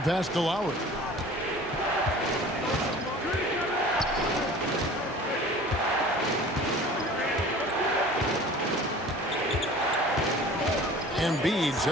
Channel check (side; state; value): both; normal; correlation 0.44